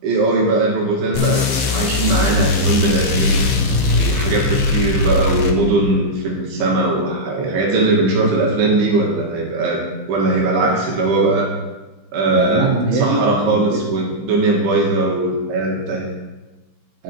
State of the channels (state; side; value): late; left; 15 ms